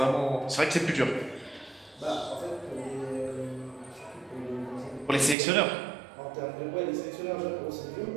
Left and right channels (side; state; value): left; drops out; at 5.4 s